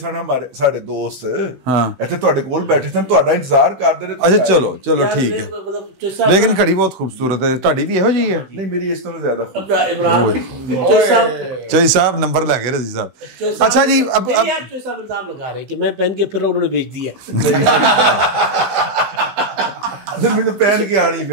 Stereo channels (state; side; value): late; left; 16 ms